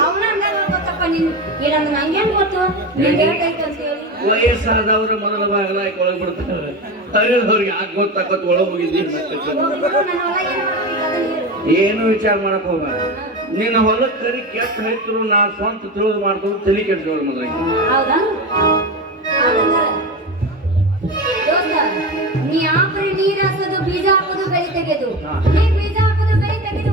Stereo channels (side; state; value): both; normal; correlation 0.23